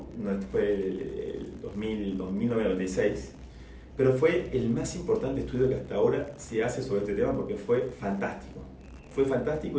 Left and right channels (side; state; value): both; identical; correlation 1.00